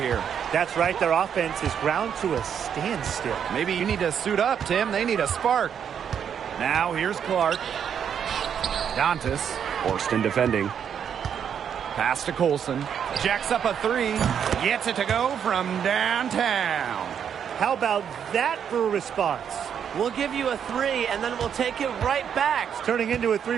That's right. Their offense is ground to a standstill. Maybe you need to suit up, Tim. They need a spark. Now here's Clark. Dantas. Horston defending. Pass to Colson. Jacks up a three. Gets it to go from downtown. How about that for a response? We'll give you a 3, and then we'll take it right back. It's turning into a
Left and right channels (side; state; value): left; quieter; 8.2 dB